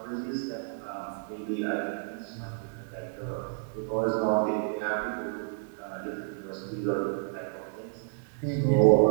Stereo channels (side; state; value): left; silent; 58 dB below the other